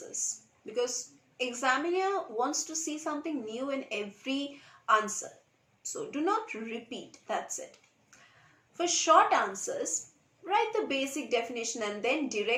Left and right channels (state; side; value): identical; both; correlation 1.00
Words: because examiner wants to see something new in every answer. So do not repeat, that's it. For short answers, write the basic definition and then